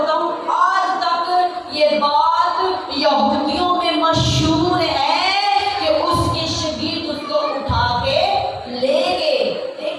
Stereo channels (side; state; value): both; identical; correlation 1.00